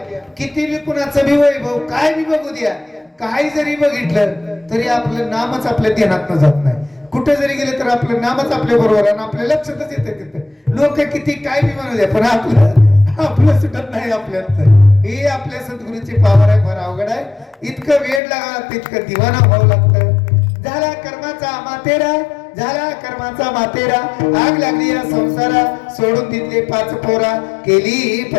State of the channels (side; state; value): right; drops out; at 18.2 s